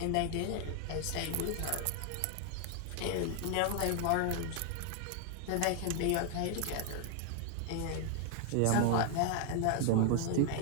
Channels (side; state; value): both; different; correlation 0.00